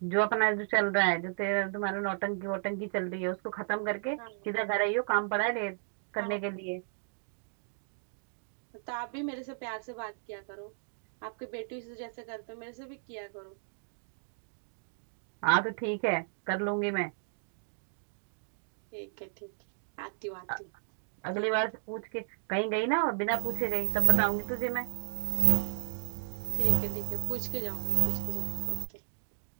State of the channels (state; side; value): silent; left; digital silence